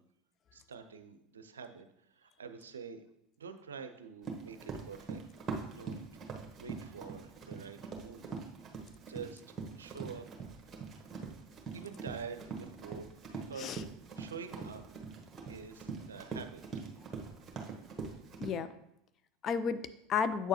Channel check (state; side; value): normal; both; correlation 0.39